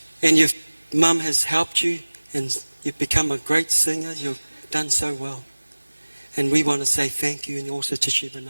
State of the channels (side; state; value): both; inverted; correlation -1.00